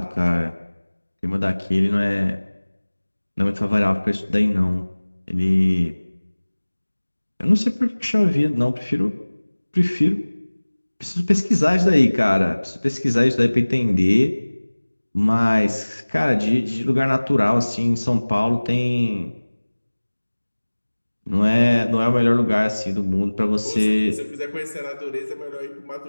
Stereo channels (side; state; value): both; inverted; correlation -1.00